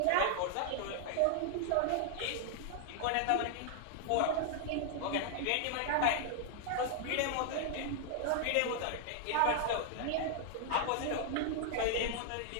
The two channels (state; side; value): different; both; correlation 0.00